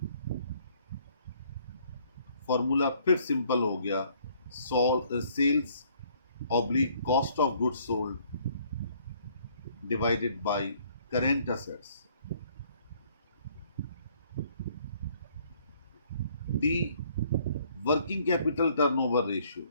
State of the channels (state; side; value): inverted; both; correlation -0.62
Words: फॉर्मूला फिर सिंपल हो गया, sales oblique cost of goods sold divided by current assets. D working capital turnover ratio.